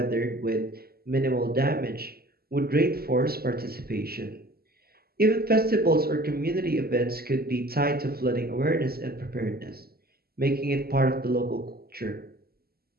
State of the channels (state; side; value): late; left; 0.45 ms